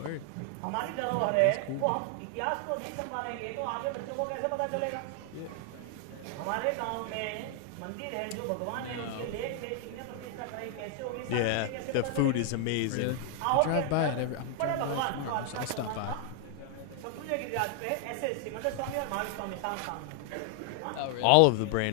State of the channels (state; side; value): different; both; correlation 0.00